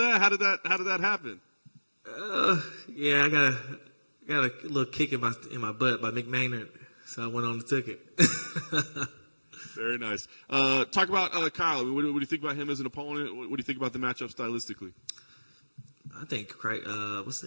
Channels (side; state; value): both; inverted; correlation -1.00